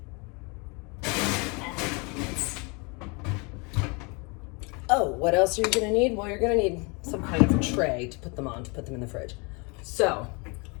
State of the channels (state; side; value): quieter; right; 30.7 dB